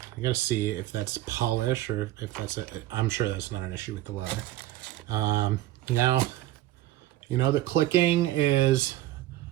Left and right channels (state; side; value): quieter; left; 15.1 dB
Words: gotta see if that's polish or if that's I'm sure that's not an issue with the leather. Now, the clicking